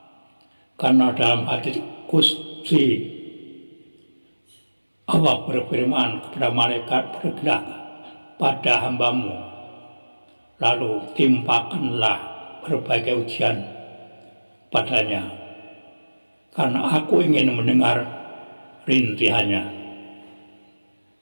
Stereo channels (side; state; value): both; inverted; correlation -1.00